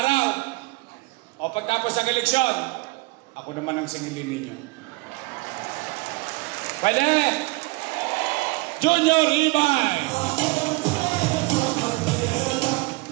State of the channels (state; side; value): quieter; left; 24.4 dB